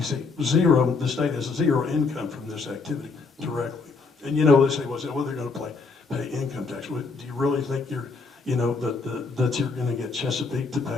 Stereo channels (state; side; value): quieter; right; 4.4 dB